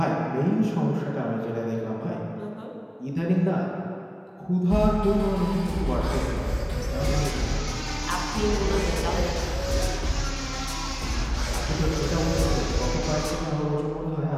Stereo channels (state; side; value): identical; both; correlation 1.00